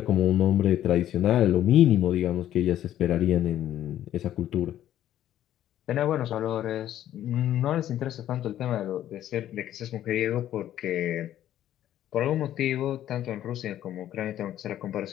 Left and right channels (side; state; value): right; quieter; 12.0 dB